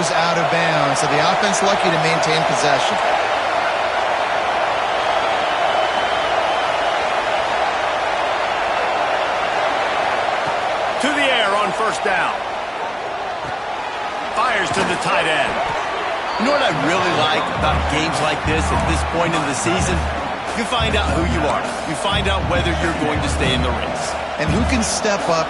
out of bounds. So the offense lucky to maintain possession. To the air on first down. Fires to the tight end. You know what I really like about games like this at this point in the season? You find out who you are. You find out whether you're going to stay in the race. And who can step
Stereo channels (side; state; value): both; identical; correlation 1.00